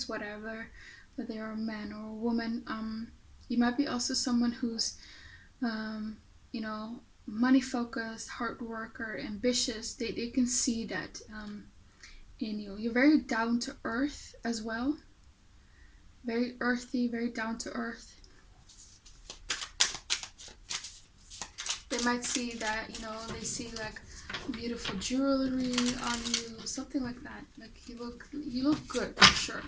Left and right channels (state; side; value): identical; both; correlation 1.00